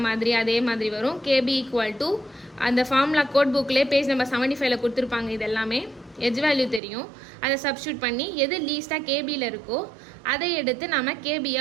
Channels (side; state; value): left; drops out; at 6.8 s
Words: மாதிரி அதே மாதிரி வரும். KB ஈக்குவல் டு அந்த ஃபார்முலா கோட் புக்லேயே பேஜ் நம்பர் 75ல் கொடுத்துருப்பாங்க. இது எல்லாமே எஜ் வேல்யூ தெரியும், அதை சப்ஸ்டியூட் பண்ணி எது லீஸ்ட்டாக கேபியில் இருக்கோ அதை எடுத்து நம்ம